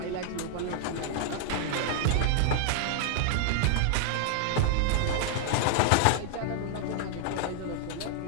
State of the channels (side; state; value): both; different; correlation 0.00